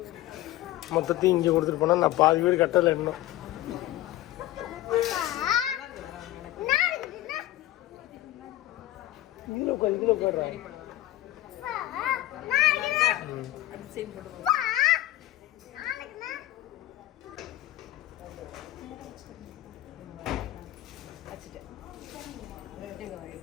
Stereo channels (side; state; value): right; quieter; 15.4 dB